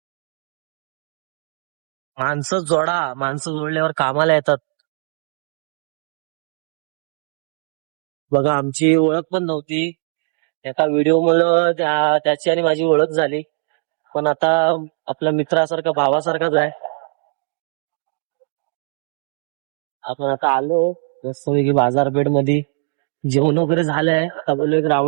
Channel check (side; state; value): left; silent; 58 dB below the other